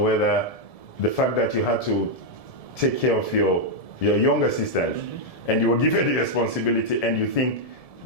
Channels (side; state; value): right; late; 1.7 ms